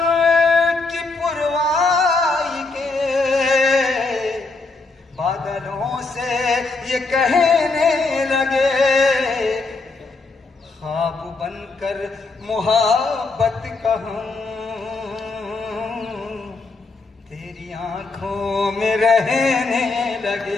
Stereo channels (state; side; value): quieter; right; 3.7 dB